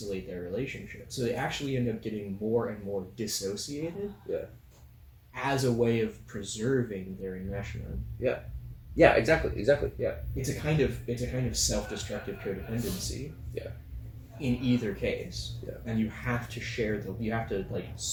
their relationship. So they actually end up getting more and more dissociated. Yeah. As a way of preserving their enmeshment. Yeah. Yeah, exactly. Yeah. It's a kind of self-destructive codependency. Yeah. In either case. Yeah. And you have to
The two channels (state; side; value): identical; both; correlation 1.00